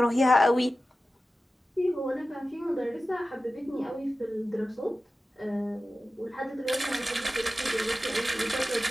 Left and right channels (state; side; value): normal; both; correlation 0.94